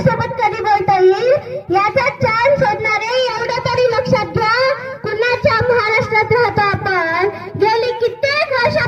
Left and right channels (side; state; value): both; identical; correlation 1.00